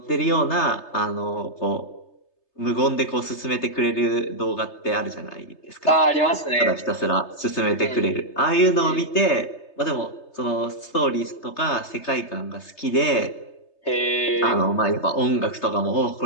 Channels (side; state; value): right; late; 3.3 ms